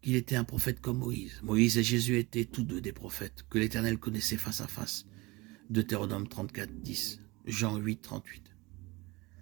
qu'il était un prophète comme Moïse. Moïse et Jésus étaient tous deux des prophètes que l'Éternel connaissait face à face. Deutéronome 34, 10, Jean 8, 38.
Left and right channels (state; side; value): quieter; left; 23.2 dB